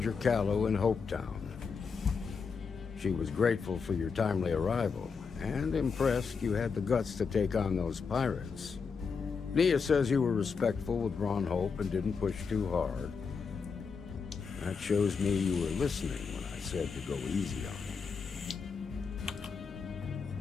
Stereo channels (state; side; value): quieter; right; 5.5 dB